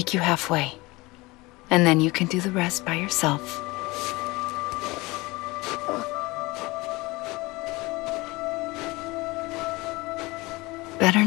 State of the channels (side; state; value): right; quieter; 22.6 dB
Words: you halfway. And then you can do the rest by yourself. Better